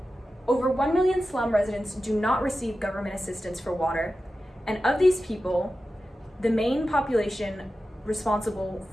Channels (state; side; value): normal; both; correlation 0.93